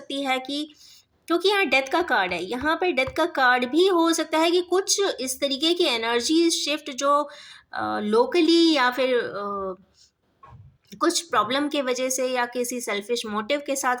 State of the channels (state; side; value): identical; both; correlation 1.00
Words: है कि क्योंकि यहाँ डेथ का कार्ड है, यहाँ पे डेथ का कार्ड भी हो सकता है कि कुछ इस तरीके की एनर्जी शिफ्ट जो लोकली या फिर कुछ प्रॉब्लम के वजह से या किसी सेल्फिश मोटिव के साथ